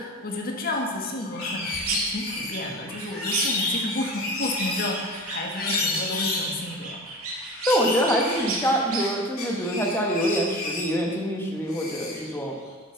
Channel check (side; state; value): both; normal; correlation 0.33